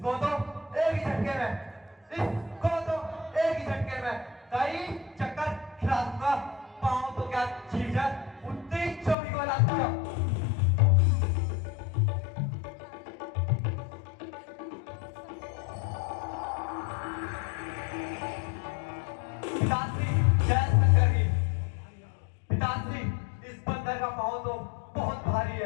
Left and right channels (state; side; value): drops out; right; at 9.2 s